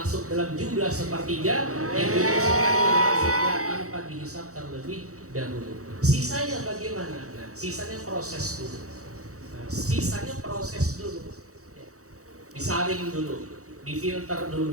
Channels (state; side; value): late; left; 0.65 ms